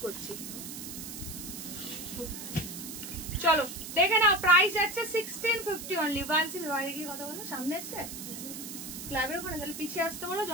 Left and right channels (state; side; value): noise; right; hiss, 9 dB below the sound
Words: করছি। চলো দেখে নাও, প্রাইস আছে 1650 অনলি। 16 বাইরে গিয়ে কথা বলো, সামনে এসছে ক্লাবের ওখানে, তাহলে পিছিয়ে আসতে বলো